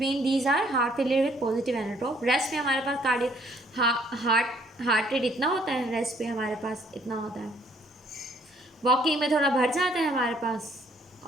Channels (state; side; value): normal; both; correlation 0.63